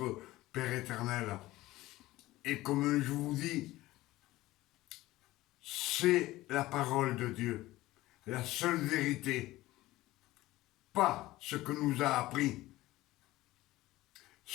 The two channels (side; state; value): right; quieter; 17.5 dB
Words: Père éternel. Et comme je vous dis, c'est la parole de Dieu, la seule vérité, pas ce que nous a appris,